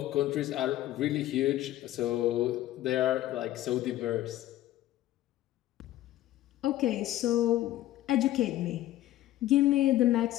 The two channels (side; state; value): right; quieter; 14.4 dB